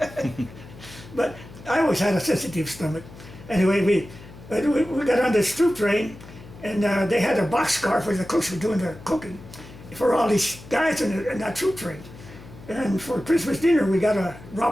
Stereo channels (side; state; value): left; noise; hum, 18 dB below the sound